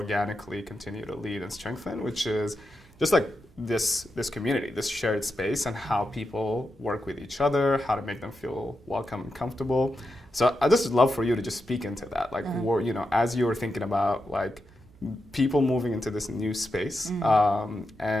continue to lead and strengthen, which is just this community, this shared space, and how people work with each other, how to make them feel welcome and comfortable. So I just would love for you to just speak into that, as you were thinking about people moving into this new space, it's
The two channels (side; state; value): right; noise; hum, 26 dB below the sound